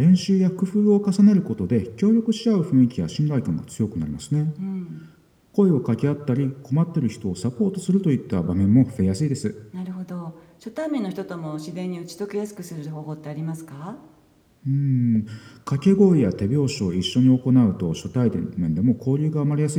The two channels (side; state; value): both; identical; correlation 1.00